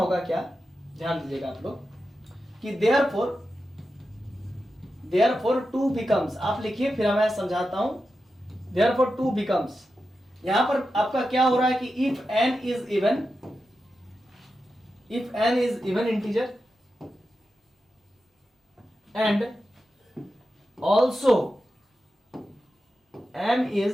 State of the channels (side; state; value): both; normal; correlation 0.90